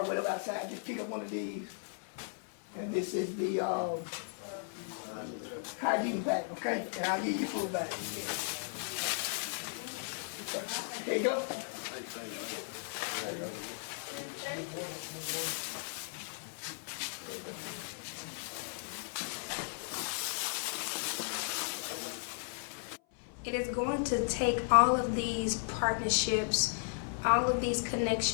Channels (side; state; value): right; silent; 54 dB below the other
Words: with them outside, to pick up one of these. And this is the hygiene pack, okay? And I'll give you food back. There you go. It is going to take all of these partnerships, all of these